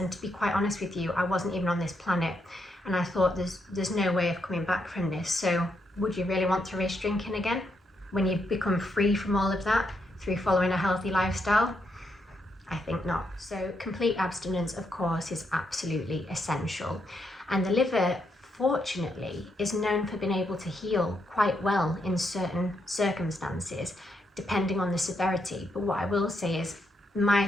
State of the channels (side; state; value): both; normal; correlation 0.79